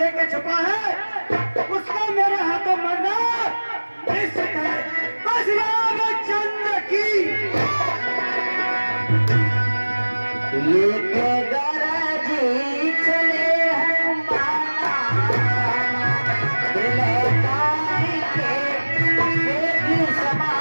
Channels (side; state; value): both; inverted; correlation -1.00